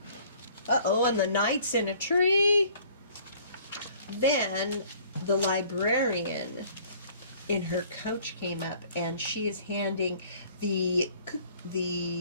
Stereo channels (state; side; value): inverted; both; correlation -0.55